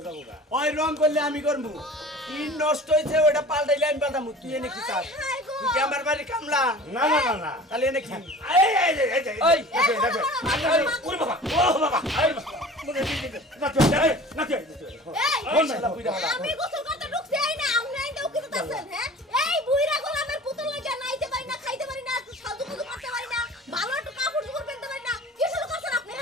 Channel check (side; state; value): both; normal; correlation 0.42